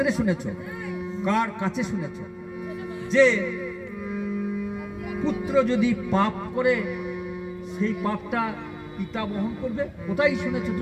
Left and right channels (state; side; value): identical; both; correlation 1.00